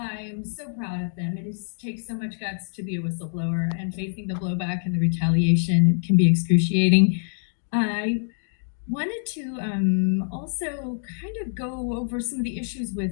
so proud of them. Takes so much guts to be a whistleblower, and facing the blowback and the retaliation can be excruciating. I wanted to also kind of go over some of the issues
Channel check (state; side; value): silent; right; digital silence